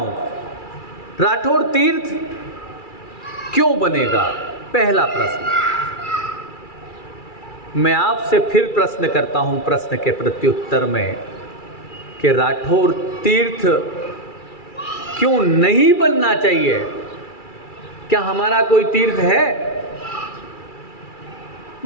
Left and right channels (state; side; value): late; right; 2.3 ms